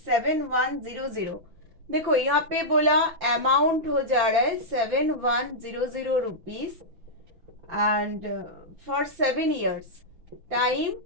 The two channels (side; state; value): left; late; 6.0 ms